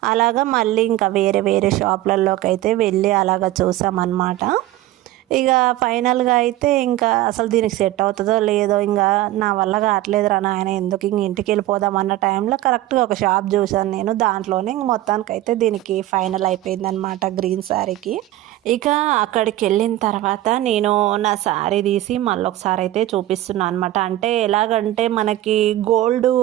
అలాగా మళ్ళీ ఇంకా వేరే వేరే షాపులలోకి అయితే వెళ్ళి అలాగ చూసామన్నమాట. ఇక ఫైనల్గా అయితే ఇంకా అసలు దీనికి సెట్ అవుతుందో లేదో, ఇంకా నా వల్ల కావట్లేదు రా నాయన, ఎందుకు ఇంక ఇంటికి వెళ్ళిపోదాం అన్న టైంలో కరెక్ట్గా ఒక షాప్ చూసాను నేను. దాంట్లోనే ఇంక మొత్తానికైతే దీనికి ఫైనల్ అయిపోయిందనమాట, గ్రీన్ శారీకి. ఇక అక్కడికి వెళ్ళిన తర్వాత నేను నా శారీ తీసి మళ్ళీ ఒకసారి అయితే చూపిస్తున్నాను అనమాట. అంటే ఎలాగంటే మనకి గోల్డ్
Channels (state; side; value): quieter; left; 15.2 dB